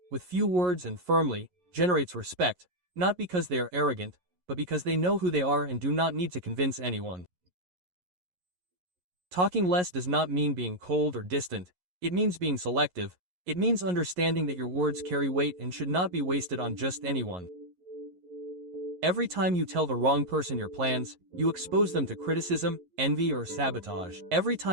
with few words and firmly, generates respect, not because they are arrogant, but because they know who they are and do not need to convince anyone. Talking less does not mean being cold or distant. It means being selective. It means understanding that your words carry weight and should not be wasted on just anyone. Every time you tell the wrong person your plans, you expose them to criticism, envy, or sabotage. Every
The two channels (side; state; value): left; late; 11 ms